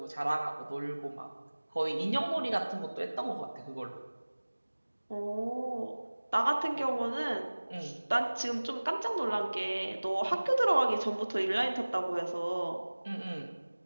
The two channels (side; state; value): both; inverted; correlation -1.00